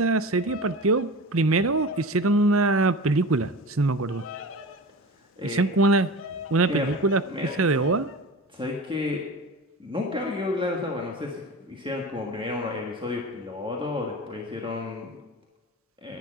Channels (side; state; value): both; normal; correlation 0.32